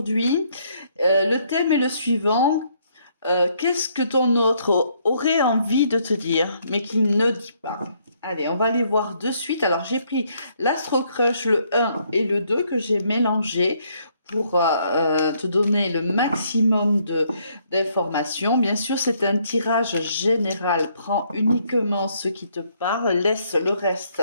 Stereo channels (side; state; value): both; inverted; correlation -0.69